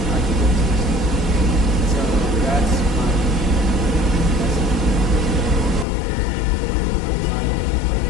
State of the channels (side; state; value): right; drops out; at 5.9 s